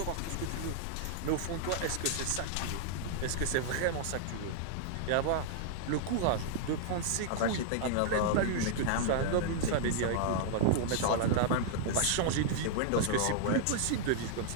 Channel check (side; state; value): both; different; correlation -0.01